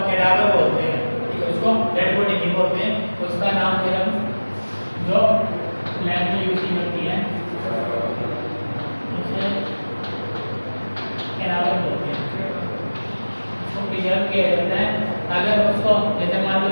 कैडावर बोलते हैं, ठीक है, उसको डेड बॉडी नहीं बोलते हैं, उसका नाम फिर हम जो लैब में यूज की जाती है उसे कैडावर बोलते हैं, उसको प्रिजर्व किया जाता है। अगर उसको जैसे मान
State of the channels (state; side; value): inverted; both; correlation -1.00